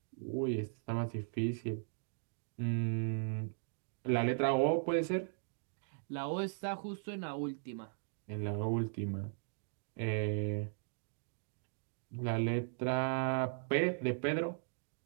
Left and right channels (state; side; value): silent; left; digital silence